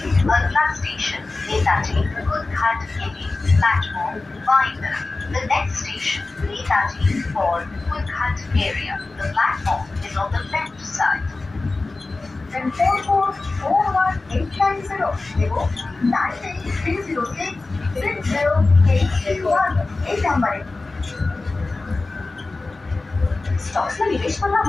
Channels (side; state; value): right; quieter; 3.4 dB